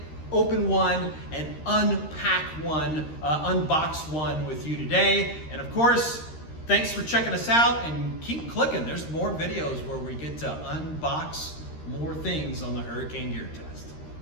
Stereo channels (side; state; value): right; late; 13 ms